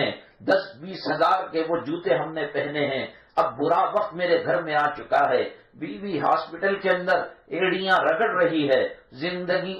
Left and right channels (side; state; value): both; identical; correlation 1.00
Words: 10-20 ہزار کے وہ جوتے ہم نے پہنے ہیں۔ اب برا وقت میرے گھر میں آ چکا ہے، بیوی ہاسپٹل کے اندر ایڑیاں رگڑ رہی ہے، زندگی